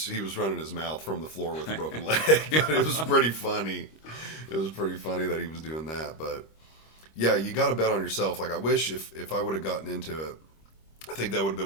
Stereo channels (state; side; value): late; right; 26 ms